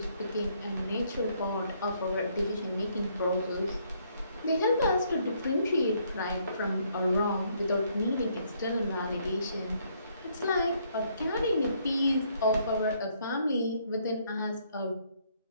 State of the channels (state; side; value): inverted; both; correlation -0.69